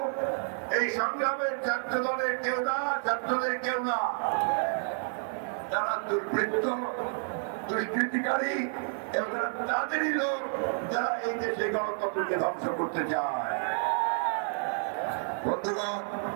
এই সংগ্রামের ছাত্র দলের কেউ না, ছাত্রদের কেউ না, তারা দুর্বৃত্ত, দুষ্কৃতিকারী এবং তাদেরই লোক যারা এই দেশে গণতন্ত্রকে ধ্বংস করতে চায়। বন্ধুগণ,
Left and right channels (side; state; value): left; silent; digital silence